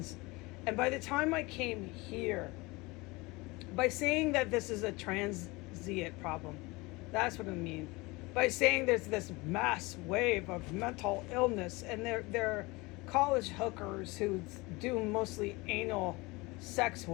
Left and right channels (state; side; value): quieter; right; 23.8 dB